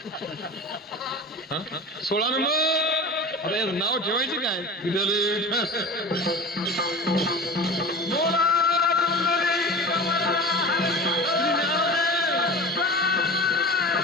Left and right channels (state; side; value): normal; both; correlation 0.34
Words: 16 नंबर. अरे नाव ठेवायचे काय?